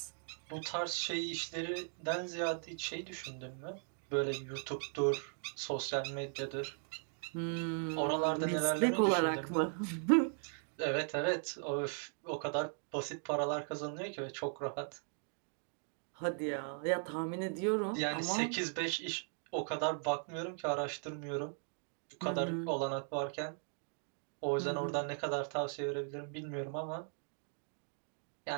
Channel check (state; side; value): silent; left; 52 dB below the other